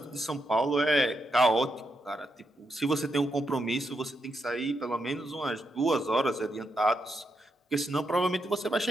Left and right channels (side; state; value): both; normal; correlation 0.83